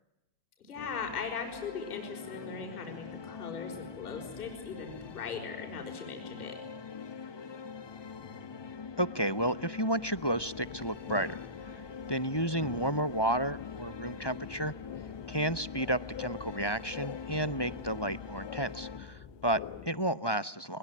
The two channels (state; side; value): late; right; 1.1 ms